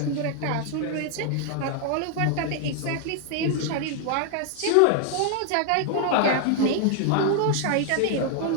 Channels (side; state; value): both; different; correlation 0.00